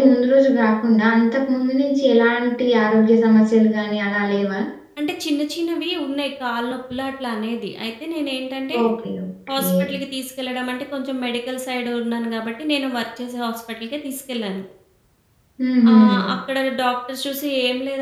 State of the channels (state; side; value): identical; both; correlation 1.00